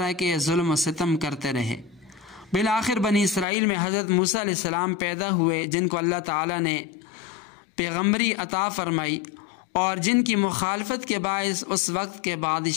کے ظلم و ستم کرتے رہے۔ بالآخر بنی اسرائیل میں حضرت موسیٰ علیہ السلام پیدا ہوئے، جن کو اللہ تعالیٰ نے پیغمبری عطا فرمائی اور جن کی مخالفت کے باعث اس وقت کے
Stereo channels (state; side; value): drops out; right; at 3.5 s